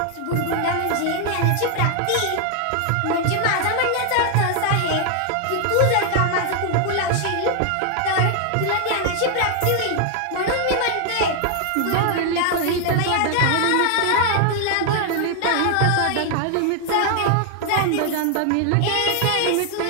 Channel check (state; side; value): different; both; correlation 0.00